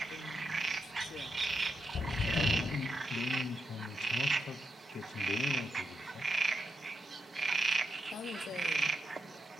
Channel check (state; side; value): normal; both; correlation 0.84